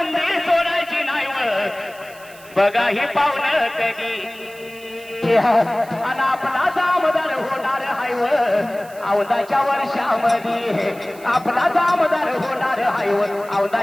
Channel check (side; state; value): right; noise; hiss, 22 dB below the sound